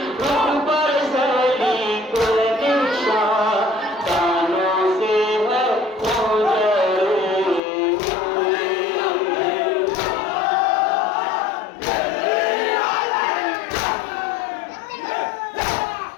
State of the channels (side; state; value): right; drops out; at 7.6 s